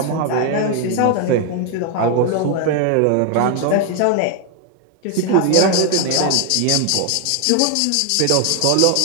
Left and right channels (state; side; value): different; both; correlation 0.01